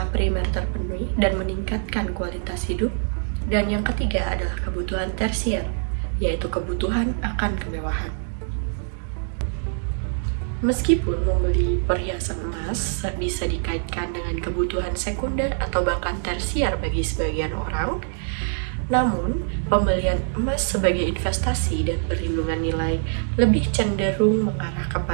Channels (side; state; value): left; silent; digital silence